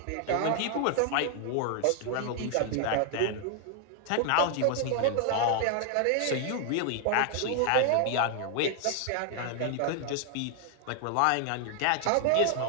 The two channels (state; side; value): different; both; correlation 0.00